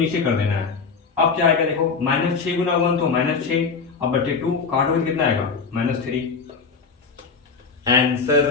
कर देना है। अब क्या आएगा देखो, -6 गुना 1 तो -6, अब बटे 2 काटोगे कितना आएगा -3। आंसर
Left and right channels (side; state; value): right; quieter; 5.1 dB